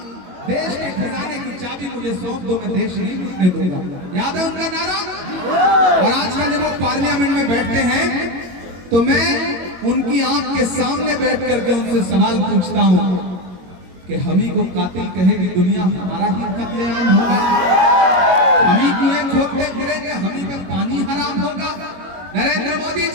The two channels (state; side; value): late; left; 22 ms